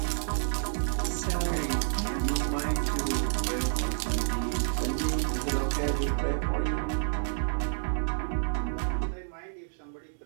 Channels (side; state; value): left; silent; digital silence